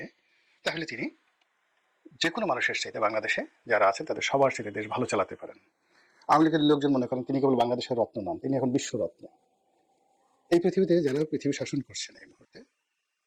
তাহলে তিনি যে কোনো মানুষের চাইতে বাংলাদেশে যারা আছেন তাদের সবার চাইতে দেশ ভালো চালাতে পারেন। আওয়ামী লীগের লোকজন মনে করেন তিনি কেবল বাংলাদেশের রত্ন নন, তিনি এখন বিশ্বরত্ন। এই পৃথিবীতে যারা পৃথিবী শাসন করছেন এই মুহূর্তে,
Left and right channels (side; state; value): both; identical; correlation 1.00